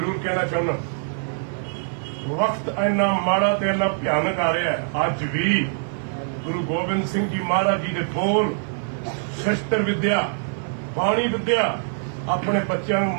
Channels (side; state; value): left; silent; 55 dB below the other